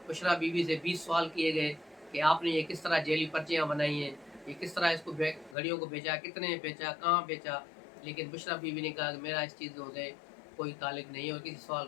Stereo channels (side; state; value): right; drops out; at 5.6 s